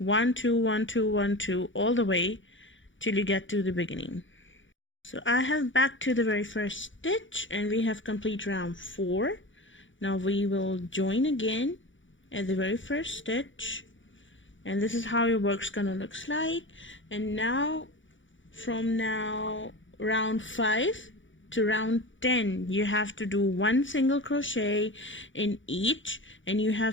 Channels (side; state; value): right; late; 0.56 ms